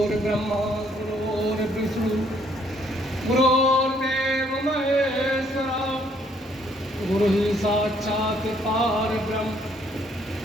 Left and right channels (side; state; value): both; normal; correlation 0.66